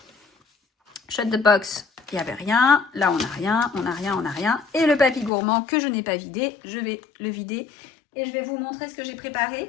Shut the box. Il n'y avait rien. Là, on n'a rien. On n'a rien. On n'a rien. Et le papy gourmand que je n'ai pas vidé, je vais le vider Et je vais vous montrer ce que j'ai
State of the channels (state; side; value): drops out; right; at 5.3 s